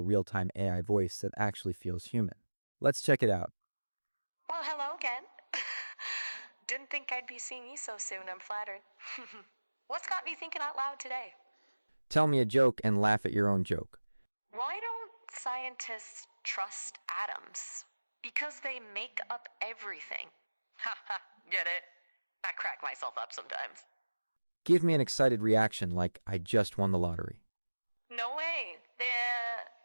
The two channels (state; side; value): inverted; both; correlation -1.00